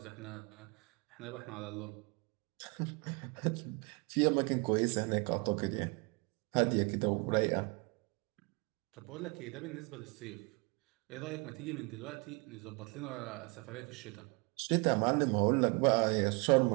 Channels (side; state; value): left; quieter; 29.9 dB